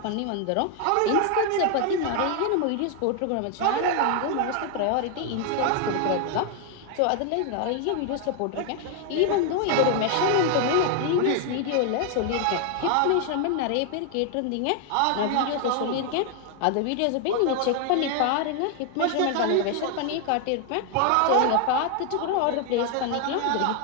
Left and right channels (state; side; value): different; both; correlation 0.00